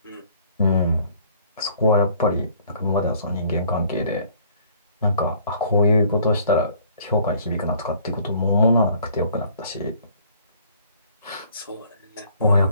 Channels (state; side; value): inverted; both; correlation -0.58